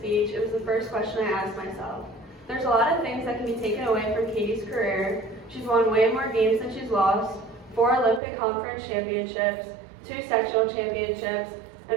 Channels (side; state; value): left; drops out; at 8.2 s